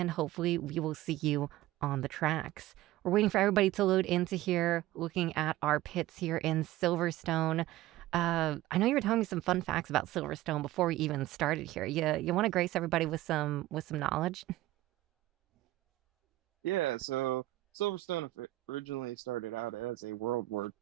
hopefully we will see you on the tracks. We're waiting for everybody to load into here, looking at our pits here in Silverstone. I know you were telling me some fun facts about Silverstone before we even started here. You want to grace everybody with some knowledge? Yeah, so Silverstone originally started out as a World War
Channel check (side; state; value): left; quieter; 16.4 dB